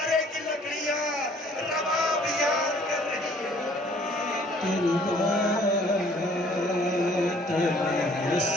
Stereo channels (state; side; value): normal; both; correlation 0.58